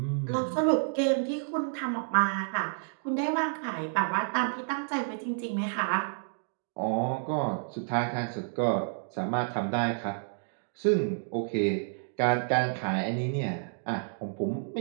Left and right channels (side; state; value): left; silent; digital silence